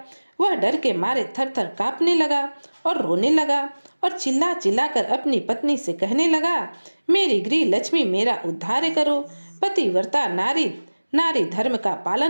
वह डर के मारे थर थर कांपने लगा और रोने लगा और चिल्ला चिल्ला कर अपनी पत्नी से कहने लगा, मेरी गृह लक्ष्मी मेरा उद्धार करो। पतिव्रता नारी, नारी धर्म का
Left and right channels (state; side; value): inverted; both; correlation -1.00